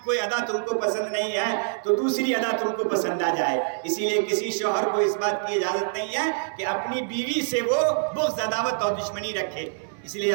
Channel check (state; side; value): silent; left; 61 dB below the other